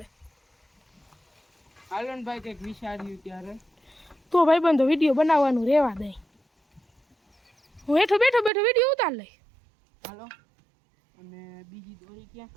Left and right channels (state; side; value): drops out; left; at 8.5 s